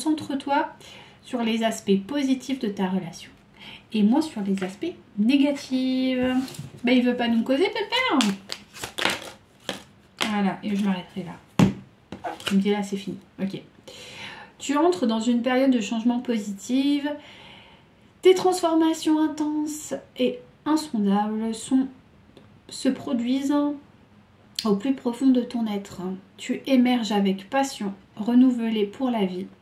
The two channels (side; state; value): both; identical; correlation 1.00